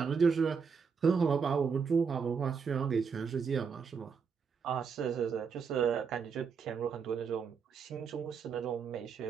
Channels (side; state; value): left; quieter; 6.0 dB